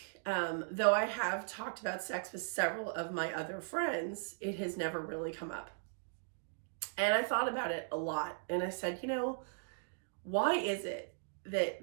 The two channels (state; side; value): silent; left; digital silence